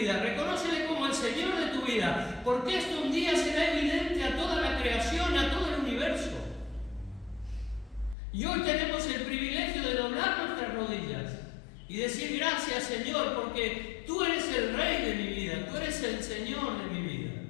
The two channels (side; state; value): right; drops out; at 8.2 s